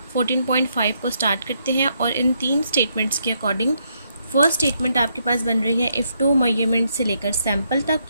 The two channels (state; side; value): inverted; both; correlation -0.76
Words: 14.5 को स्टार्ट करते हैं और इन 3 स्टेटमेंट्स के अकॉर्डिंग फर्स्ट स्टेटमेंट आपके पास बन रही है इफ़ 2 मेजरमेंट से लेकर सैम्पल तक,